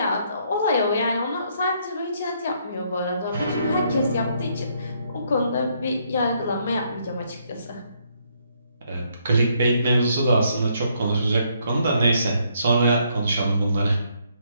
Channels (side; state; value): both; inverted; correlation -0.71